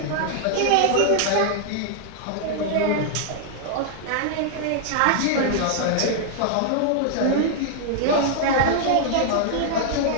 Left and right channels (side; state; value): both; different; correlation -0.01